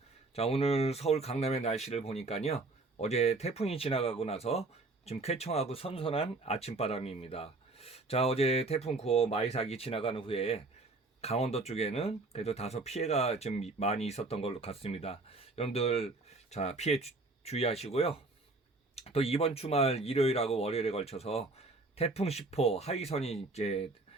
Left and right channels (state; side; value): quieter; left; 3.3 dB